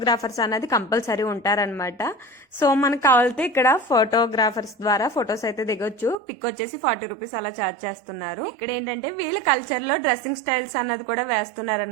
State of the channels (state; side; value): drops out; left; at 6.2 s